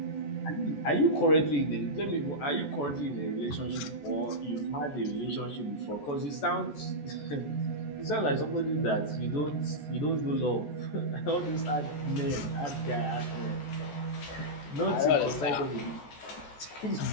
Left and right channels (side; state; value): right; late; 14 ms